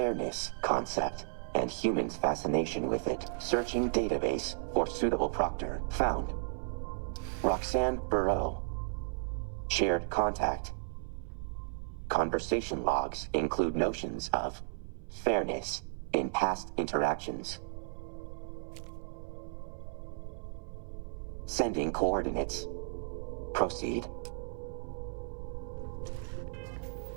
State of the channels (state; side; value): silent; left; 55 dB below the other